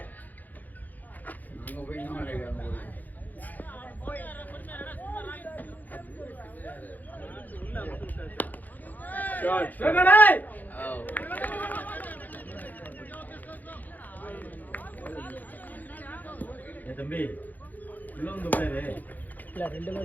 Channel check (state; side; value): late; right; 0.083 ms